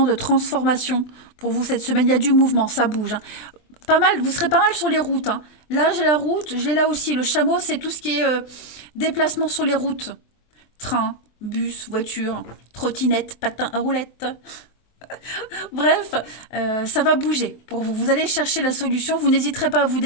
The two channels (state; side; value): late; right; 23 ms